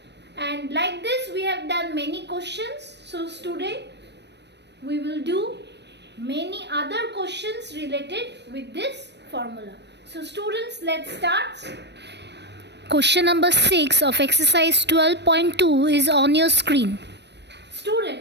And like this we have done many questions. So today we will do many other questions related with this formula. So students, let's start. Question number 6 of exercise 12.2 is on your screen.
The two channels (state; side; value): late; left; 0.50 ms